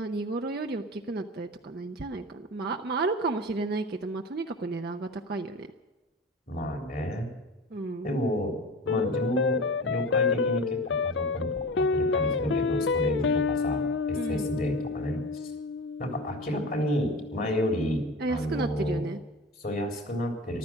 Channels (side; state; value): both; normal; correlation 0.32